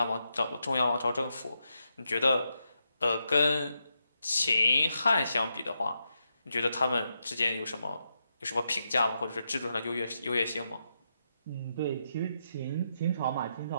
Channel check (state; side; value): inverted; both; correlation -0.83